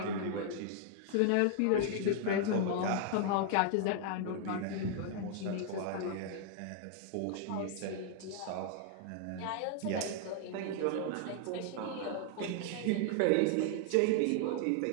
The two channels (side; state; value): both; different; correlation 0.00